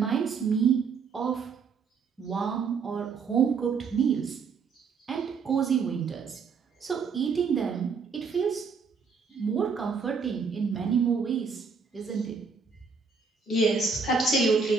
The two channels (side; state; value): left; quieter; 5.3 dB